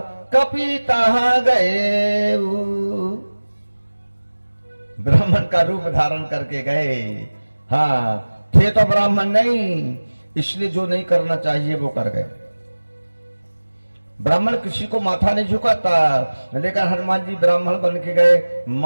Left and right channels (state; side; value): inverted; both; correlation -1.00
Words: कपि तहाँ गए, ब्राह्मण का रूप धारण करके गए। हाँ, थे तो ब्राह्मण नहीं, इसलिए जो नहीं करना चाहिए वो कर गए। ब्राह्मण किसी को माथा नहीं झुकाता, लेकिन हनुमान जी ब्राह्मण बन के गए,